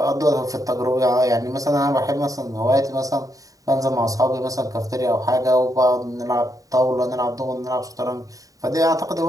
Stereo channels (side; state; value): left; late; 0.17 ms